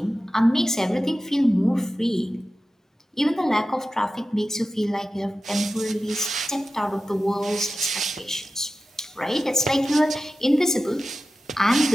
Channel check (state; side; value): normal; both; correlation 0.93